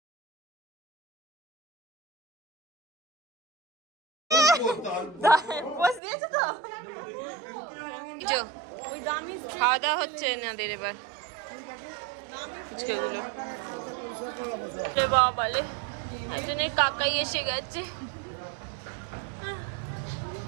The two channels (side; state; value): left; drops out; at 6.0 s